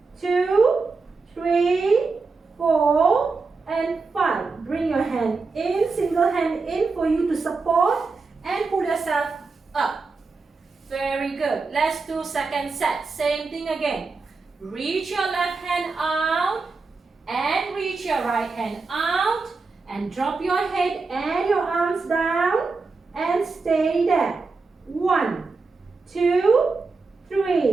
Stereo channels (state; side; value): quieter; left; 4.2 dB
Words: 2, 3, 4, and 5. Bring your hand in, single hand in for you to support and pull yourself up. Very good. Let's do second set. Same thing again. Reach your left hand out and reach your right hand out and drop your head and your arms down and stay there. 1, 2,